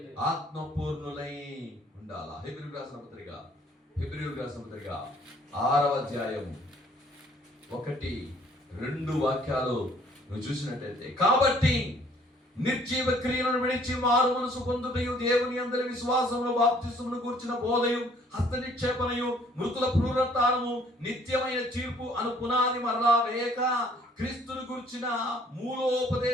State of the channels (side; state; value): both; normal; correlation 0.60